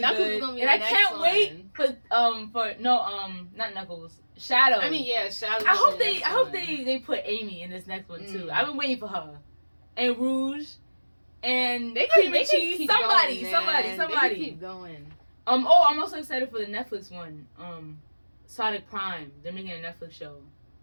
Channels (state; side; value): inverted; both; correlation -1.00